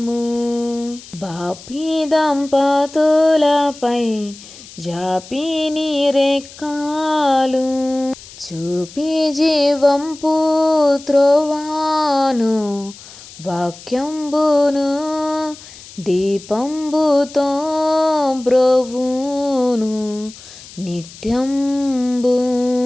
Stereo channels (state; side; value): noise; left; hiss, 18 dB below the sound